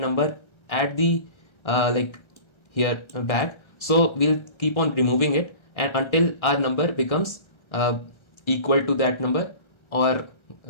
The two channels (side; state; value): right; late; 1.3 ms